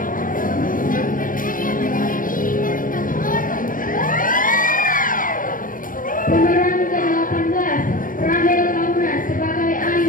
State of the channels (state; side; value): late; right; 0.39 ms